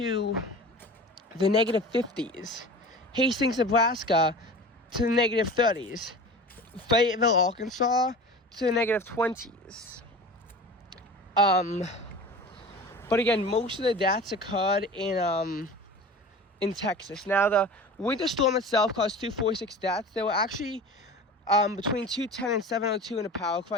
the negative 50s. Hastings, Nebraska to the negative 30s. Fayetteville, Arkansas to the negative 20s. But again, most of the deaths occurred in Texas. Now, the winter storm itself caused 246 deaths. There were actually between 210 and 702 in a power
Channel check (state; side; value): normal; both; correlation 0.36